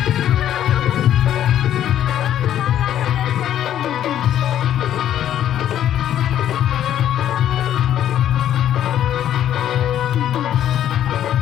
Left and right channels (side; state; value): right; quieter; 11.0 dB